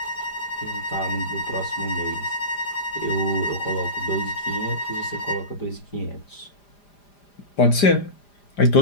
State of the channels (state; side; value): late; right; 5.0 ms